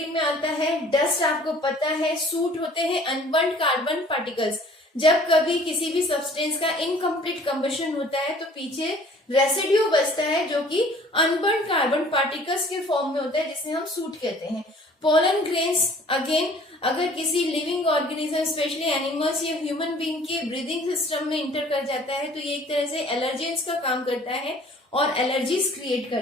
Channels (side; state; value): both; normal; correlation 0.52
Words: में आता है। डस्ट आपको पता है, सूट होते हैं अनबर्न्ड कार्बन पार्टिकल्स। जब कभी किसी भी सब्सटेंस का इनकम्प्लीट कंबशन होता है तो पीछे रेसिड्यू बचता है जो कि अनबर्न्ड कार्बन पार्टिकल्स के फॉर्म में होता है, जिसे हम सूट कहते हैं। पोलन ग्रेन्स अगेन अगर किसी लिविंग ऑर्गेनिज्म स्पेशली एनिमल्स या ह्यूमन बीइंग के ब्रीदिंग सिस्टम में इंटर कर जाता है तो ये एक तरह से एलर्जेंस का काम करता है और एलर्जीज क्रिएट